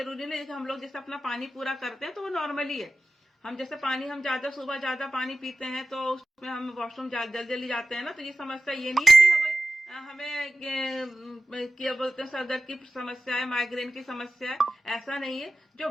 नहीं कि हम लोग जैसे अपना पानी पूरा करते हैं तो वो नॉर्मली है। हम जैसे पानी, हम ज्यादा सुबह ज्यादा पानी पीते हैं तो उसमें हम वॉशरूम जल्दी जल्दी जाते हैं ना, तो ये समस्या ये नहीं है कि हमें क्या बोलते हैं सर दर्द की समस्या है, माइग्रेन की समस्या है, ऐसा नहीं है। जो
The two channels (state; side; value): normal; both; correlation 0.94